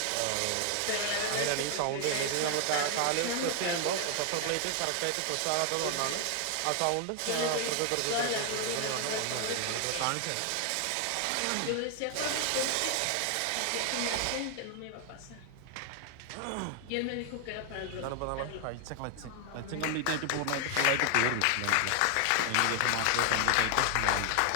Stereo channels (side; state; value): both; different; correlation 0.00